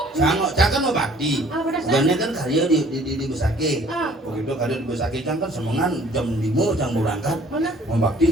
Cang kan mau bakti. Ah, pada saat- Bukannya kan karya di Besake. Ah. Begitu karya di Besake cang kan semengan jam 5 cang berangkat. Mana? Mau bakti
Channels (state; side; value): normal; both; correlation 0.55